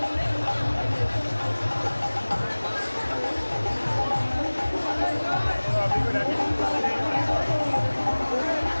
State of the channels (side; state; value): both; inverted; correlation -1.00